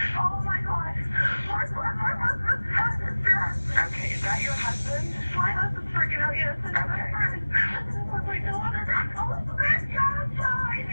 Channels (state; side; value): inverted; both; correlation -1.00